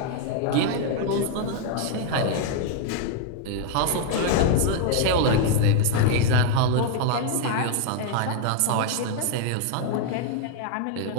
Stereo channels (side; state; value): both; different; correlation 0.00